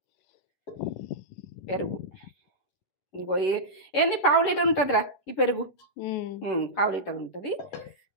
పెరుగు ఇంకో ఏంది 1/2 లీటర్ ఉంటుందిరా ఈ పెరుగు, 1/2 లీటర్ ఉంటుంది.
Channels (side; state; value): right; late; 11 ms